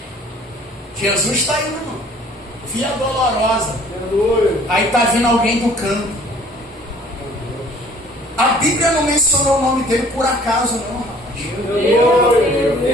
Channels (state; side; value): normal; both; correlation 0.54